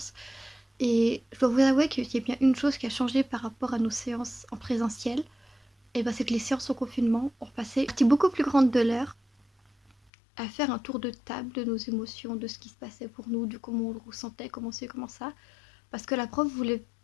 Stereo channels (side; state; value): right; drops out; at 9.9 s